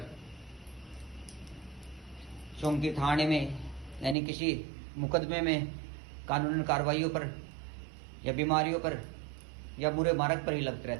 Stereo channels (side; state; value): left; drops out; at 4.2 s